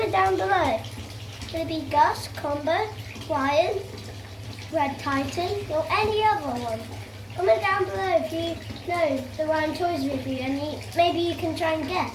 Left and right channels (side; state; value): both; identical; correlation 1.00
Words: down below. Could it be Gus, Combo, Ryan, Red Titan, or any other one? Comment down below if you know the Ryan Toys review and maybe you can try and